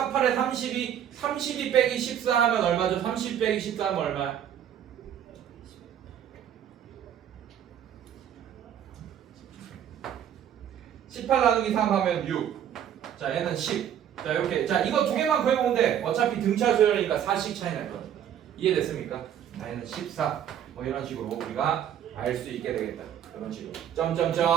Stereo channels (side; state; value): left; quieter; 9.7 dB